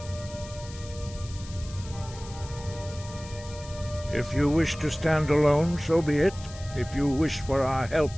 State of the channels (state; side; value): noise; left; hiss, 17 dB below the sound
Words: If you wish to stand alone, so be it. If you wish for our help,